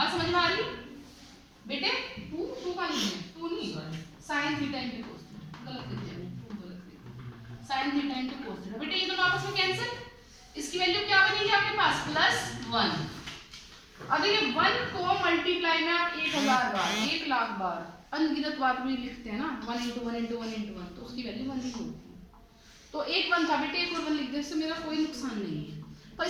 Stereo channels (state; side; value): identical; both; correlation 1.00